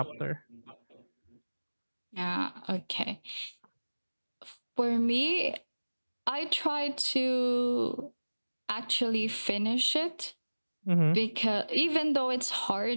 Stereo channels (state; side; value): inverted; both; correlation -1.00